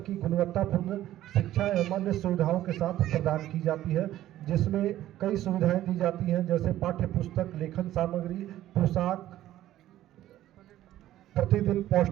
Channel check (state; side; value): quieter; left; 13.6 dB